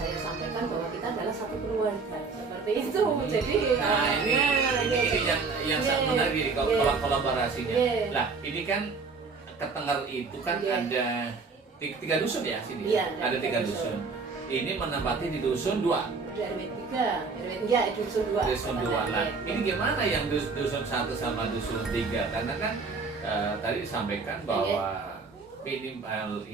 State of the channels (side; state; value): left; quieter; 4.5 dB